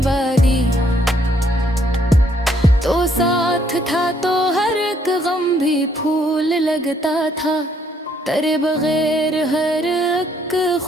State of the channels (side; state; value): both; normal; correlation 0.68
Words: तो साथ था तो हर एक गम भी फूल लगता था, तेरे बगैर हर एक